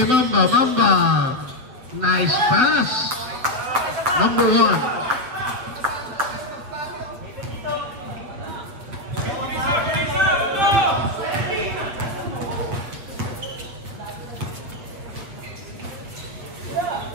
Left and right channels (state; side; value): late; left; 7.8 ms